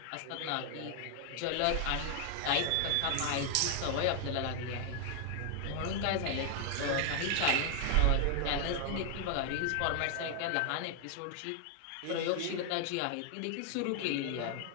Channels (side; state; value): both; different; correlation 0.00